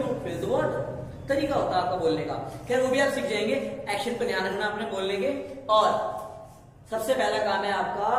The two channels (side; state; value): both; identical; correlation 1.00